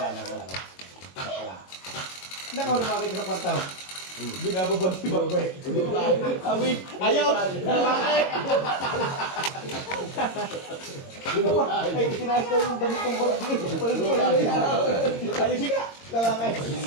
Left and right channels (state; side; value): late; right; 22 ms